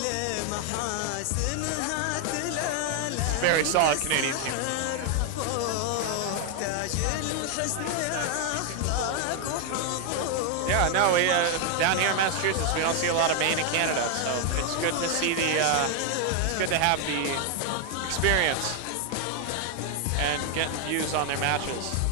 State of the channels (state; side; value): different; both; correlation 0.00